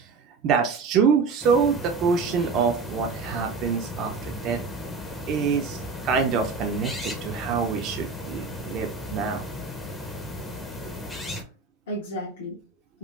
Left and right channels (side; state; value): left; quieter; 4.7 dB